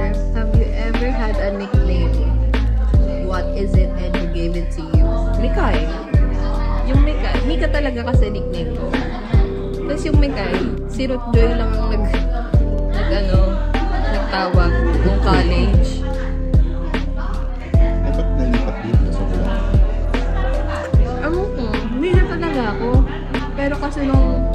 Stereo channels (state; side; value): identical; both; correlation 1.00